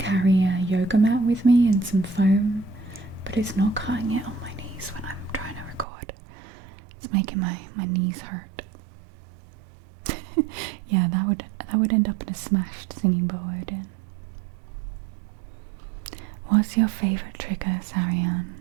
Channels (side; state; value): left; drops out; at 5.9 s